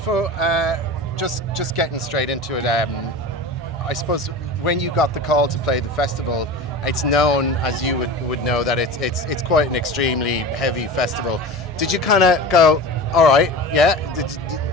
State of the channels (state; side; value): normal; both; correlation 0.32